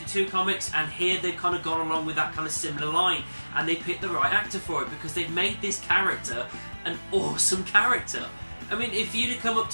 comics, and here they've kind of gone along with that kind of similar line, and they picked the right actor for it, because they've made this character an awesome character. I mean, if you'd have come up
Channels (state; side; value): inverted; both; correlation -1.00